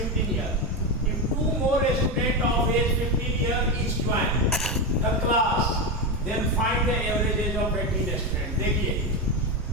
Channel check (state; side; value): normal; both; correlation 0.13